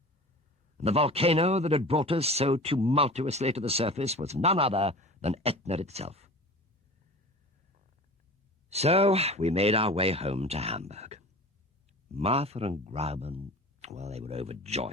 and the volcano that had brought us so tumultuously to the surface was none other than Etna itself. So we made our way home to Hamburg. Martha and Grauben, well, they were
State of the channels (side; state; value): both; normal; correlation 0.37